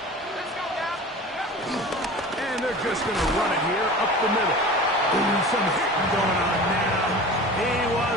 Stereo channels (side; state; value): both; normal; correlation 0.37